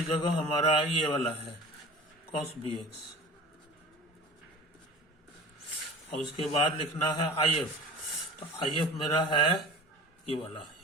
जगह हमारा ये वाला है cos bx, और उसके बाद लिखना है if, तो if मेरा है ये वाला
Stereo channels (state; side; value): normal; both; correlation 0.37